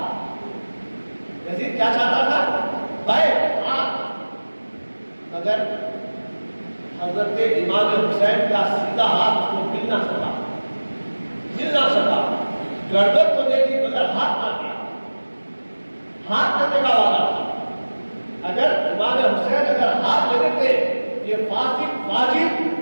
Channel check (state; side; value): inverted; both; correlation -1.00